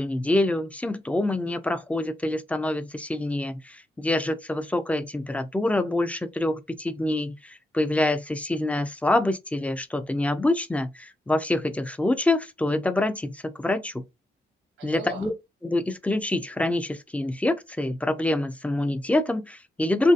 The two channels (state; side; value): normal; both; correlation 0.86